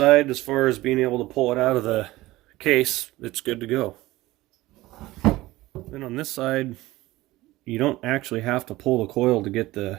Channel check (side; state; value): left; quieter; 18.2 dB